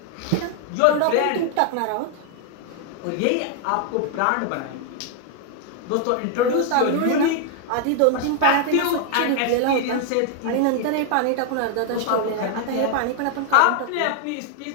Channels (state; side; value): different; both; correlation 0.00